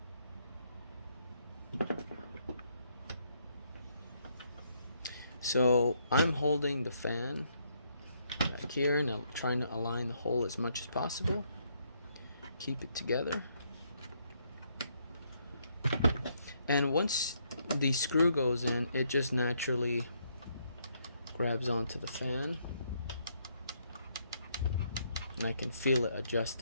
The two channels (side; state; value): both; inverted; correlation -0.73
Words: So I'm holding the fan back here and I'm trying to align the hole as much as possible. Keep it together. And once the screw goes in, it just naturally grabs onto the fan. And I can feel it